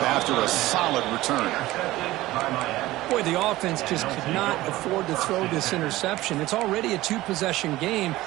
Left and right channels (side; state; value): left; quieter; 17.3 dB